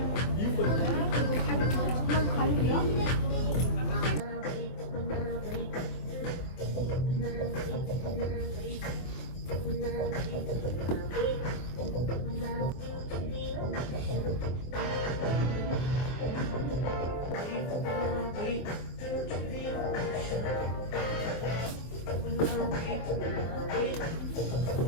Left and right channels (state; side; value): late; right; 24 ms